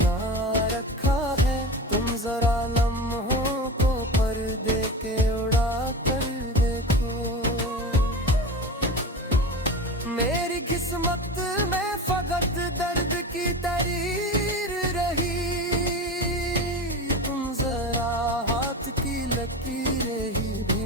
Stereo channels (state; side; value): normal; both; correlation 0.28